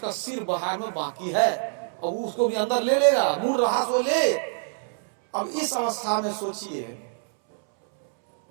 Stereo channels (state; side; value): silent; left; 61 dB below the other